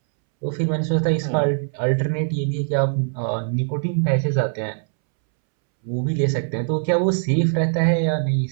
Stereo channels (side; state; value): left; silent; 64 dB below the other